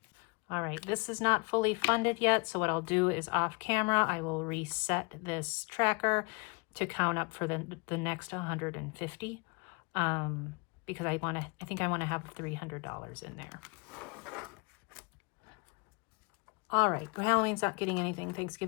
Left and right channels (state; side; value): quieter; right; 31.4 dB